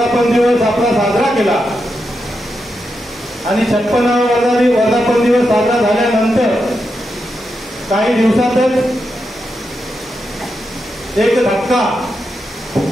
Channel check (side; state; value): both; normal; correlation 0.86